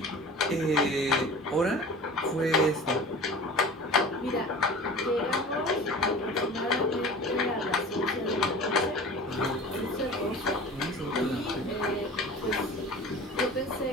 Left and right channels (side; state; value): both; normal; correlation 0.38